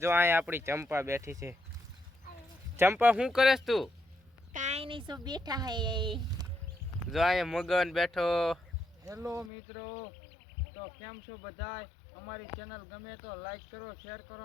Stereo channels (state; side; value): drops out; right; at 9.5 s